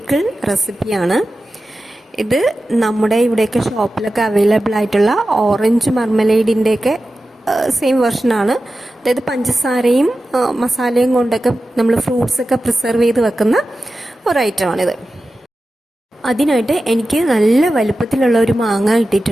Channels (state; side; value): normal; both; correlation 0.93